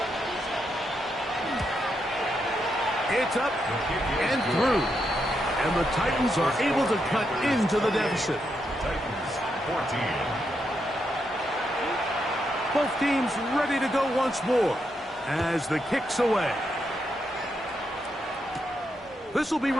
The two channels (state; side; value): normal; both; correlation 0.81